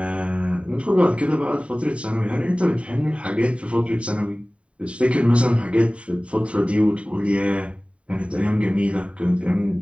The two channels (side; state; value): left; late; 0.062 ms